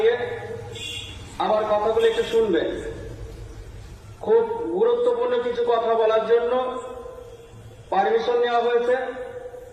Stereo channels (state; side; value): identical; both; correlation 1.00